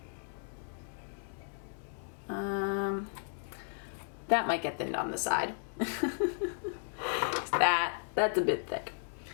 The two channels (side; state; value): right; silent; digital silence